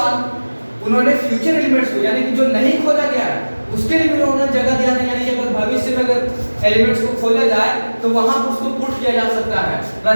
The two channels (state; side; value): inverted; both; correlation -1.00